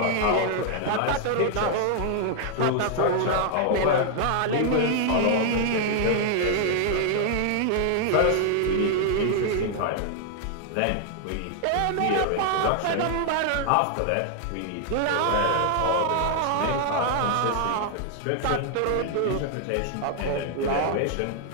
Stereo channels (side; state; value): both; different; correlation 0.00